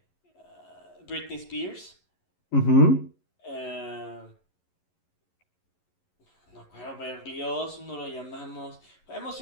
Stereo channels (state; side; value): late; right; 11 ms